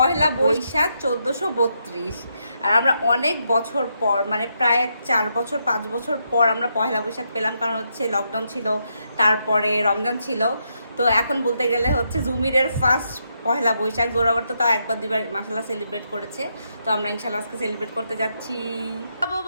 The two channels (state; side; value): inverted; both; correlation -0.80